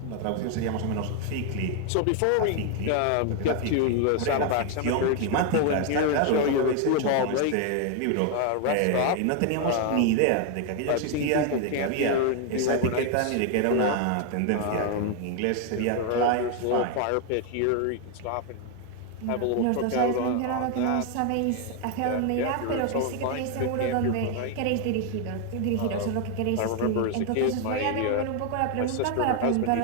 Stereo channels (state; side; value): different; both; correlation 0.00